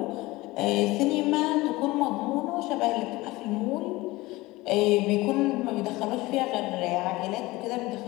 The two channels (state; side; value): quieter; right; 20.3 dB